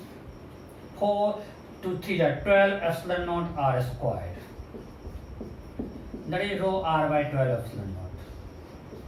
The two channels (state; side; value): identical; both; correlation 1.00